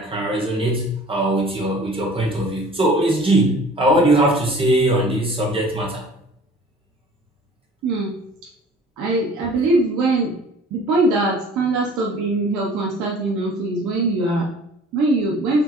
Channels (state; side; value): normal; both; correlation 0.48